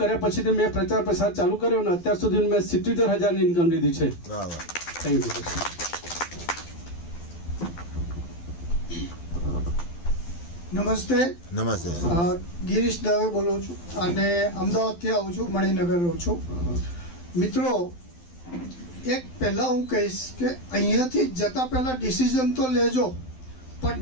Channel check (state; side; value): late; right; 12 ms